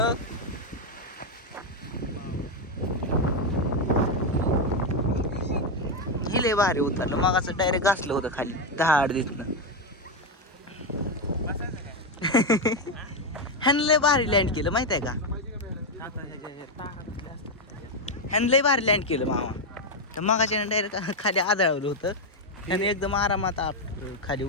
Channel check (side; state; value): both; normal; correlation 0.05